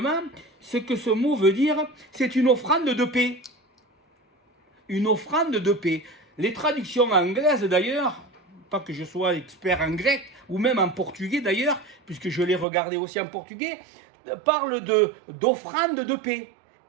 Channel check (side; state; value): left; drops out; at 12.7 s